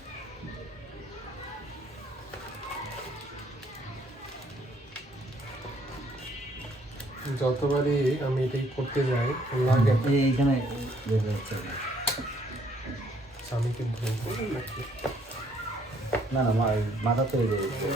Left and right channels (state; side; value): normal; both; correlation 0.65